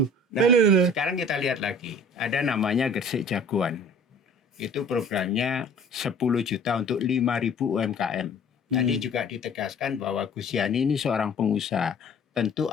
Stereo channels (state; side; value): normal; both; correlation 0.49